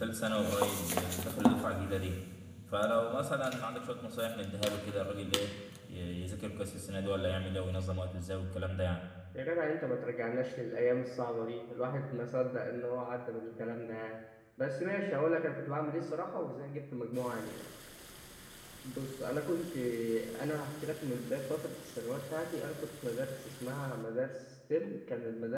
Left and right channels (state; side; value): identical; both; correlation 1.00